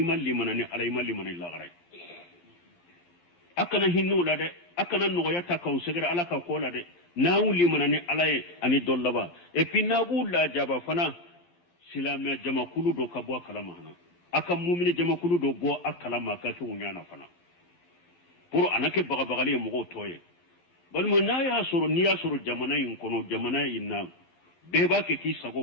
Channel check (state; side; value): late; right; 12 ms